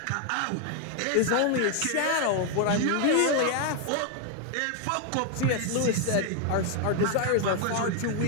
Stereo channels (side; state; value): both; different; correlation 0.00